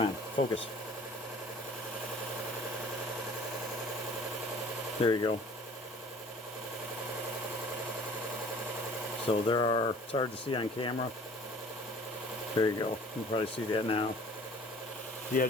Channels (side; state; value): both; normal; correlation 0.49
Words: on, focus. There you go. So there are, it's hard to see on camera. There you go. You can probably see that now. The